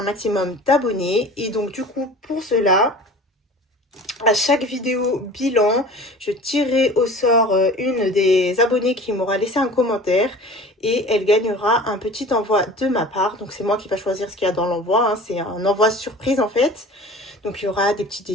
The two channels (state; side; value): normal; both; correlation 0.41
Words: maximum d'abonnés. Et donc, du coup, pour cela, à chaque vidéo bilan, je tirerai au sort une des abonnées qui m'aura laissé un commentaire et elle gagnera un petit envoi de ma part. Donc, c'est moi qui va choisir ce qu'il y a dans l'envoi, hein. C'est un envoi surprise en fait. Donc, il y aura des petits